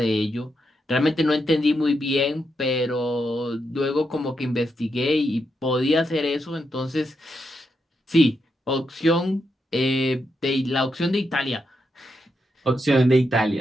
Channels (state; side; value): normal; both; correlation 0.83